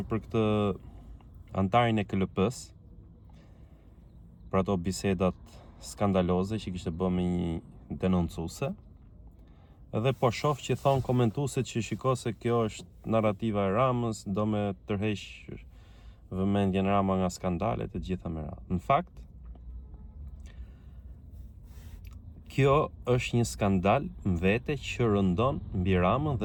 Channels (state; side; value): identical; both; correlation 1.00